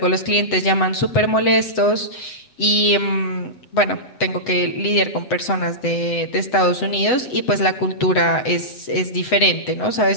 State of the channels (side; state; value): right; late; 7.9 ms